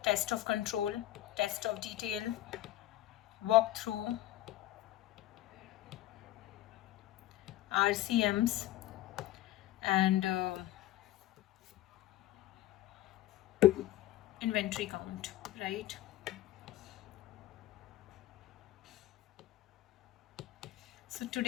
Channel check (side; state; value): right; quieter; 14.7 dB